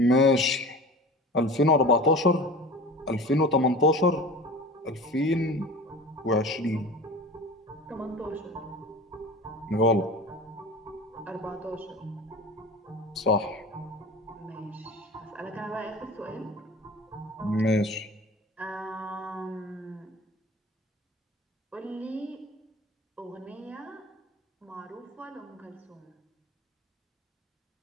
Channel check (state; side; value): normal; both; correlation 0.37